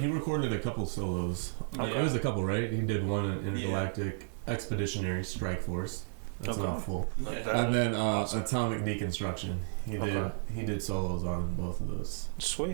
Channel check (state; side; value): silent; left; digital silence